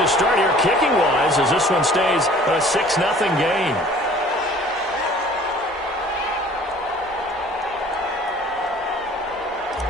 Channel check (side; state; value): both; normal; correlation 0.50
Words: start here kicking-wise as this one stays a 6-0 game.